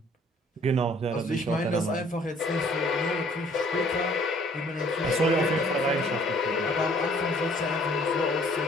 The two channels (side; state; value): both; normal; correlation 0.58